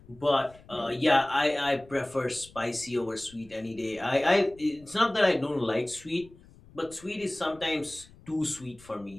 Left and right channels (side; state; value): left; noise; rumble, 24 dB below the sound